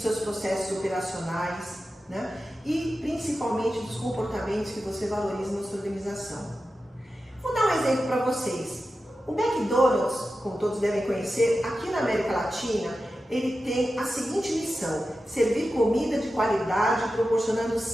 processos operacionais, né? E principalmente dos comportamentos que você valoriza na sua organização. Vou dar um exemplo para vocês. O McDonald's, como todos devem conhecer, aqui na América Latina, ele tem a seguinte missão: servir comida de qualidade, proporcionando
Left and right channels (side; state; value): both; normal; correlation 0.92